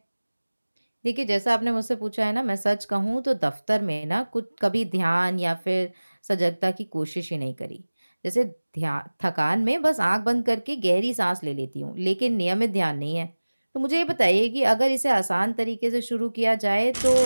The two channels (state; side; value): inverted; both; correlation -1.00